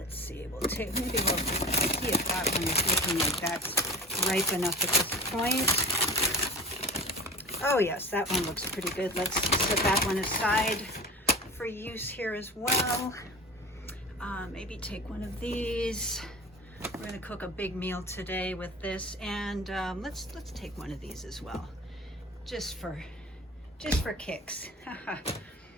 see, maybe we'll see if that one is looking like that's ripe enough at this point. Oh yes, that one looks pretty good. Let's set that one aside for use here as well. Maybe take one of these. We're gonna cook a big meal today with this, and let's take one of these as well, just for kicks.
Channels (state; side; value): normal; both; correlation 0.35